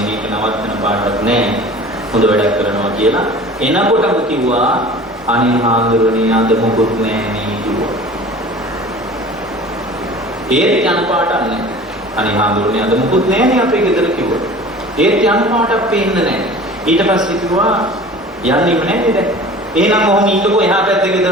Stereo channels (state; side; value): normal; both; correlation 0.42